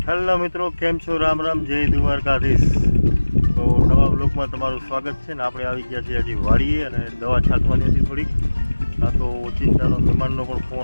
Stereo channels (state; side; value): inverted; both; correlation -1.00